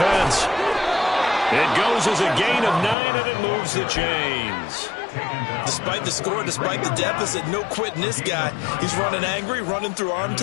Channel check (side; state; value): right; drops out; at 3.0 s